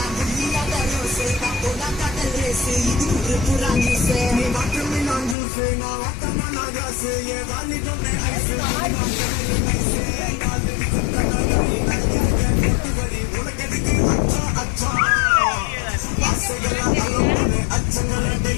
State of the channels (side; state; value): right; drops out; at 5.4 s